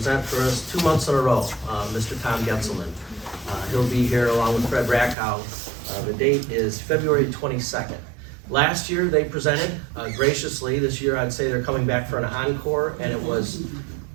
for us 2 months in a row, Mr. Tom Getzelman. He'll be here along with Fred Rackhow. The date is February 22nd. Last year they presented graciously. This year I'd say they're coming back for an encore, and it was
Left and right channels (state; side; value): drops out; left; at 5.2 s